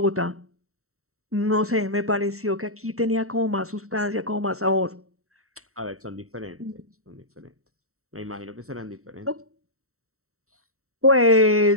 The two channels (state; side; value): late; left; 0.63 ms